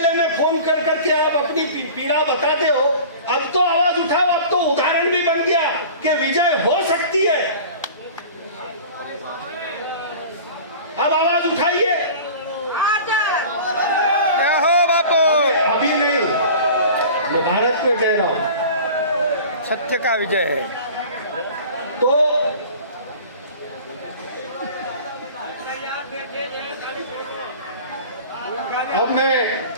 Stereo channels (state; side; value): inverted; both; correlation -0.40